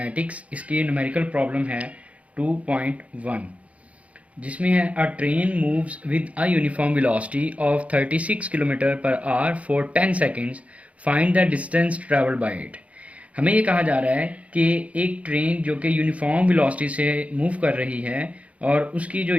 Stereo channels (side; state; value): left; late; 0.065 ms